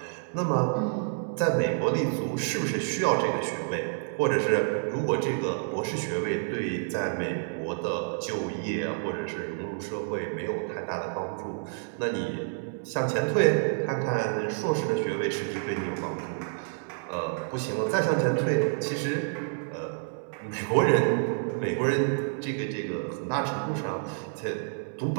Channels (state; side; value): silent; left; 59 dB below the other